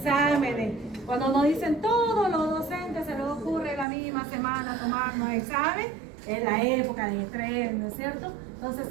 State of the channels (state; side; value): drops out; left; at 3.9 s